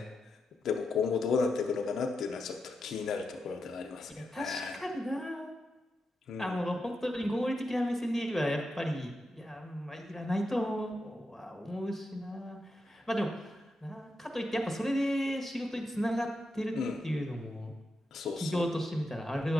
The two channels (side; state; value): both; normal; correlation 0.87